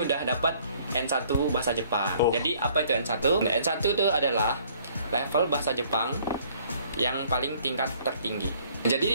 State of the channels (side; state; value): both; inverted; correlation -0.60